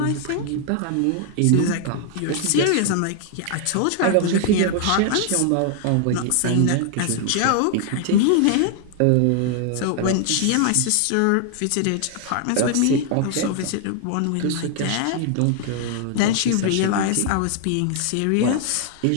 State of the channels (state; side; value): different; both; correlation 0.00